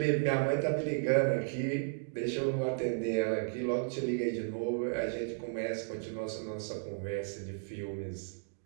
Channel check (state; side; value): silent; left; digital silence